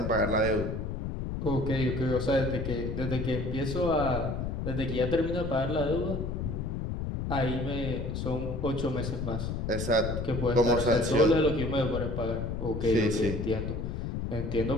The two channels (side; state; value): left; noise; rumble, 3 dB below the sound